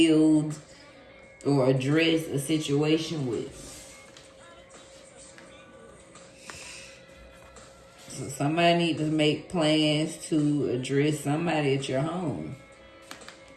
or address a situation with. So somebody need to make plans to address somebody at your home.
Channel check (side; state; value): both; identical; correlation 1.00